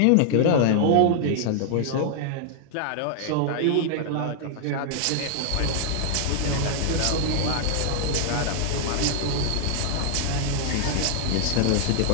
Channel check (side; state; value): both; different; correlation -0.01